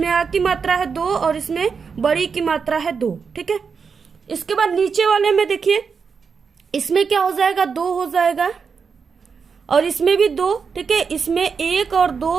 आ की मात्रा है 2 और इसमें बड़ी की मात्रा है 2, ठीक है। इसके बाद नीचे वाले में देखिए, इसमें क्या हो जाएगा 2 हो जाएगा और इसमें भी 2, ठीक है, इसमें 1 और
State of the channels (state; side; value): quieter; left; 5.7 dB